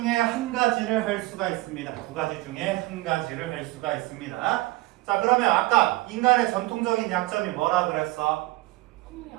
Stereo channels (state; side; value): quieter; left; 20.1 dB